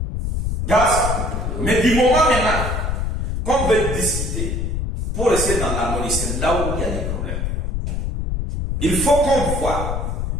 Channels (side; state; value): left; noise; rumble, 1 dB below the sound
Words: Mais du moment maintenant qu'on veut discuter pour rester dans l'harmonie, c'est là où il y a des problèmes. Il faut qu'on voit,